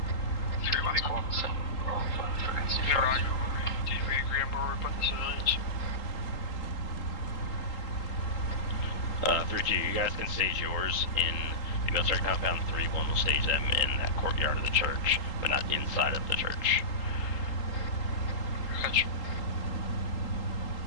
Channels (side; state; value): right; late; 3.8 ms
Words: Mike 1, 7, roll 5, frequency 50. Right. Did we agree on where we're putting the civilians? 3-2, you guys can stage yours in the military compound. 3-1 will stage them in that courtyard of the church, but not inside of the church. Gotcha.